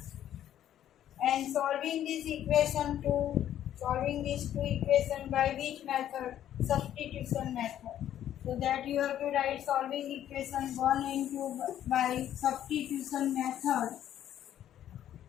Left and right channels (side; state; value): right; quieter; 11.2 dB